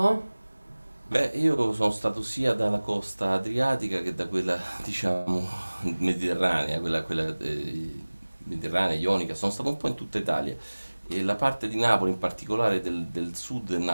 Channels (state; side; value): inverted; both; correlation -1.00